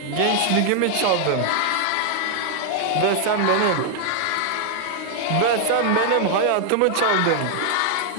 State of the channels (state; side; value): different; both; correlation 0.00